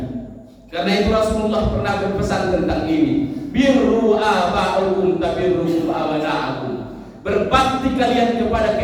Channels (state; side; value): identical; both; correlation 1.00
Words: Karena itu Rasulullah pernah berpesan tentang ini, birru aba'ukum tabirru abana'akum. Berbakti kalian kepada